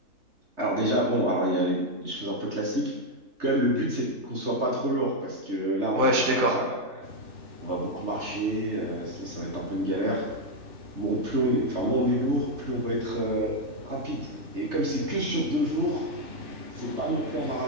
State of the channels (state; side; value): late; left; 3.3 ms